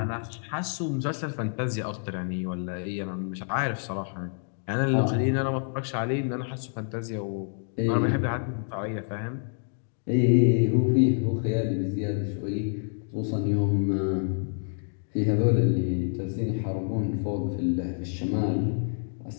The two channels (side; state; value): right; silent; 60 dB below the other